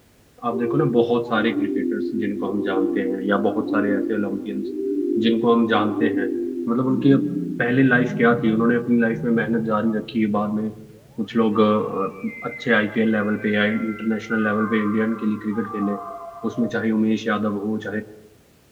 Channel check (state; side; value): identical; both; correlation 1.00